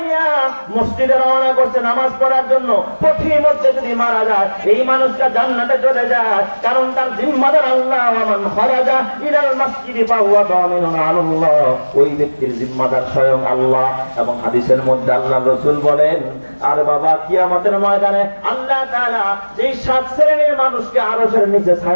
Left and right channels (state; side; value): inverted; both; correlation -1.00